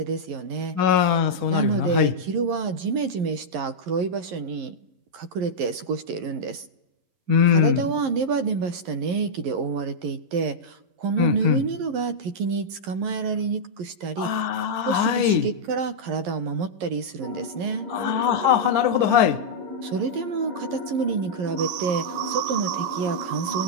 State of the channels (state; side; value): late; left; 11 ms